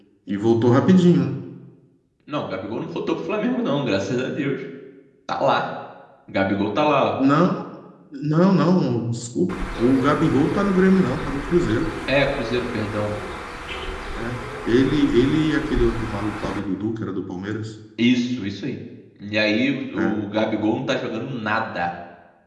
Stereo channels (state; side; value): identical; both; correlation 1.00